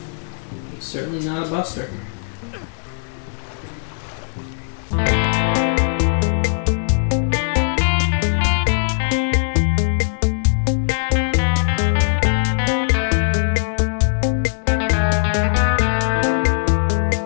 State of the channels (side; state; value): right; silent; digital silence